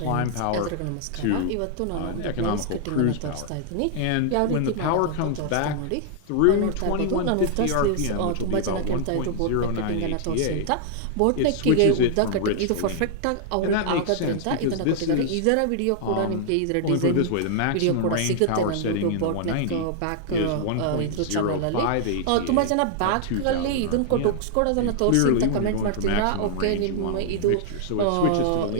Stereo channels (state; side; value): different; both; correlation -0.01